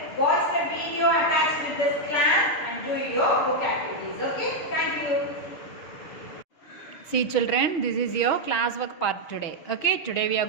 watch the video attached with this class and do your book activities. Okay, thank you. See children, this is your classwork part today. Okay, today we are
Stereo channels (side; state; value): right; late; 6.3 ms